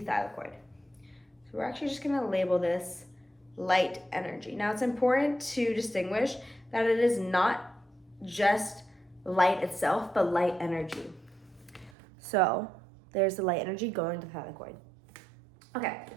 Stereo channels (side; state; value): left; drops out; at 12.0 s